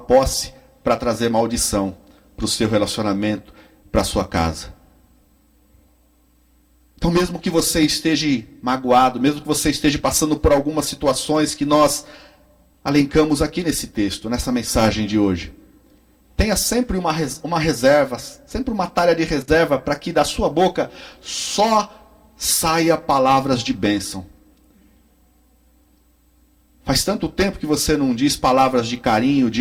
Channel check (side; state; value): both; identical; correlation 1.00